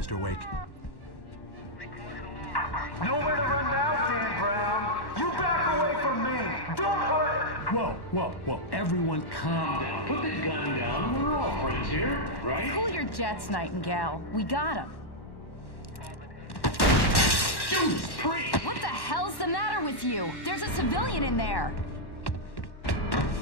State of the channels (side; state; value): right; late; 1.1 ms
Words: Wake. Nowhere to run now, Dan Brown. You back away from me. Don't hurt it. Whoa. Everyone calm down. Put the gun down. We're all friends here, right? Cool your jets, Nightingale. We got him. Judas Priest! What the hell's the matter with you? There's a civilian in there.